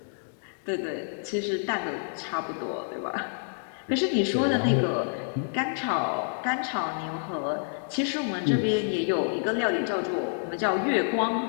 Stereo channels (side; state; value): right; silent; digital silence